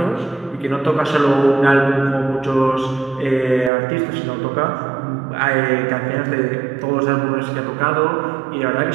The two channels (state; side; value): drops out; left; at 3.7 s